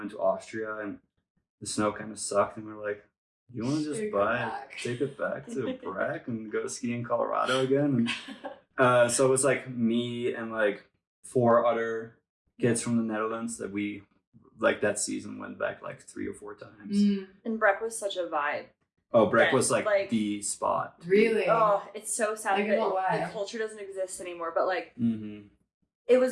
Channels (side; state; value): both; identical; correlation 1.00